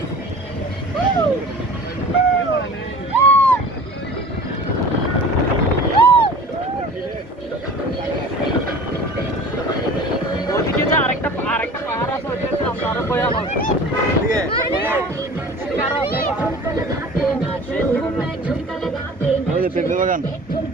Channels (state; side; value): normal; both; correlation 0.42